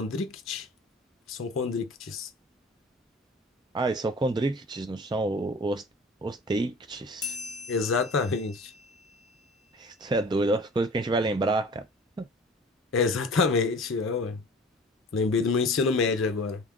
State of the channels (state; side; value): normal; both; correlation 0.43